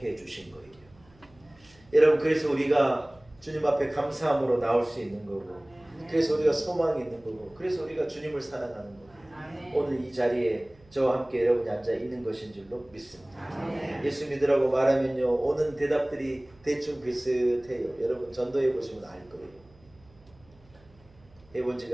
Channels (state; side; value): noise; right; hum, 28 dB below the sound